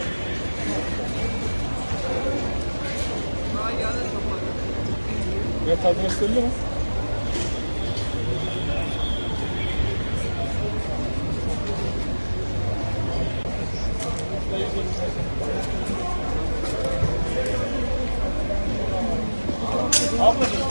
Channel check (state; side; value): inverted; both; correlation -1.00